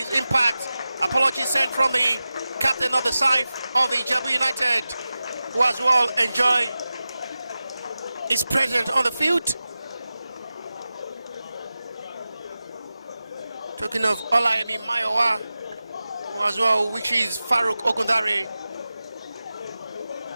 impact. Apologies sent from the captain of the side of the IJEBU United, who as well enjoy his presence on the field. Talking of Olayemi Mayowa, who as well, which is Farouk Ogundari.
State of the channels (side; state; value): both; inverted; correlation -0.95